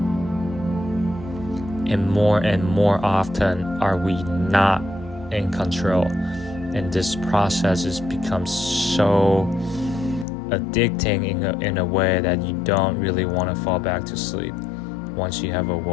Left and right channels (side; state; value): right; drops out; at 10.2 s